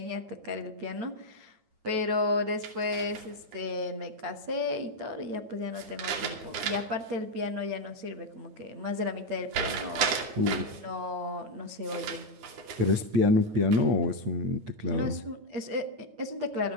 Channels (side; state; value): left; late; 9.2 ms